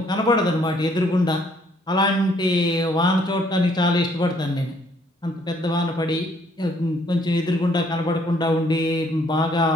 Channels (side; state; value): both; normal; correlation 0.65